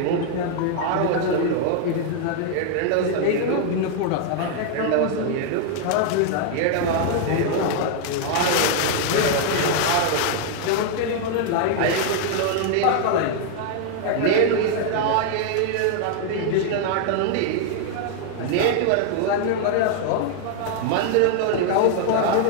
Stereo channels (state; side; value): different; both; correlation 0.00